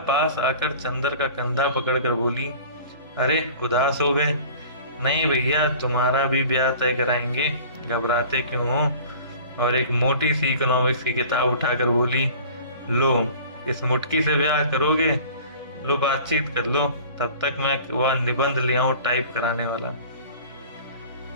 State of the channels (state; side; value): inverted; both; correlation -0.44